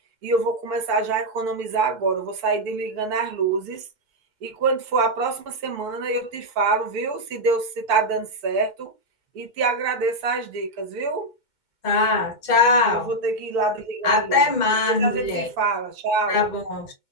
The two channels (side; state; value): right; late; 2.2 ms